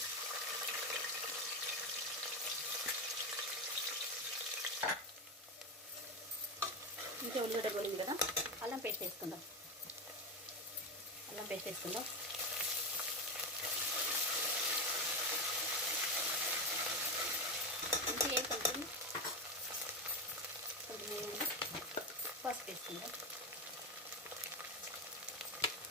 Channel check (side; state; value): both; normal; correlation 0.14